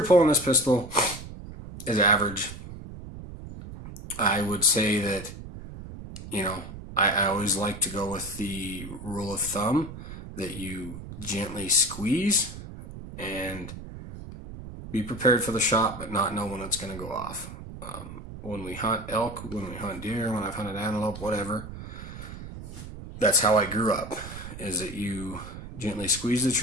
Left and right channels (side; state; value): right; noise; rumble, 12 dB below the sound